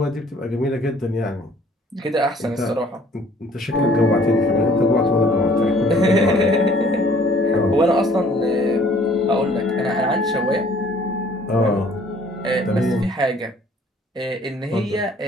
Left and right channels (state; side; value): normal; both; correlation 0.57